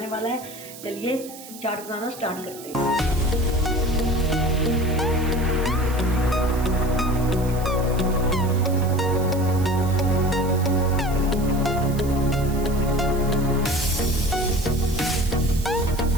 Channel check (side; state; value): right; noise; hiss, 16 dB below the sound